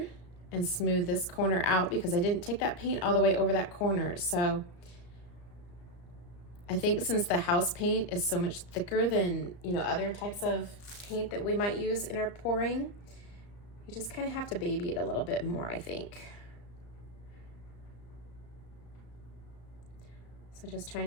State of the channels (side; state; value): right; late; 34 ms